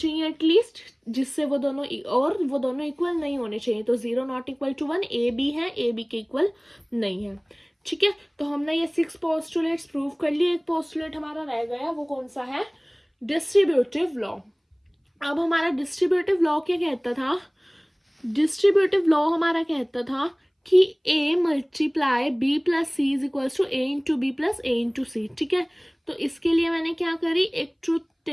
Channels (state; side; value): identical; both; correlation 1.00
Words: एटलीस्ट, जिससे वो दोनों इक्वल नहीं होने चाहिए, तो 0 not equal to 1, A B है, ए बी के इक्वल नहीं है, ठीक है। तो हमने ये 6 पोस्टुलेट्स प्रूव कर लिए। एक पोस्टुलेट हमारा रह गया, वो कौन सा है, डिस्ट्रीब्यूटिव लॉ। अब हमारा डिस्ट्रीब्यूटिव लॉ क्या कहता था, डिस्ट्रीब्यूटिव लॉ हमारा कहता था कि a multiply b plus C is equals to a into B plus a into C, ठीक है। तो इसके लिए मैंने क्या करी, एक ट्रूथ